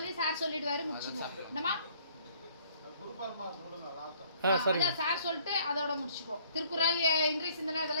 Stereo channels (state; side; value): inverted; both; correlation -0.60